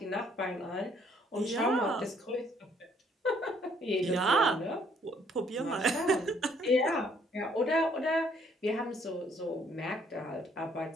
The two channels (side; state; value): both; normal; correlation 0.65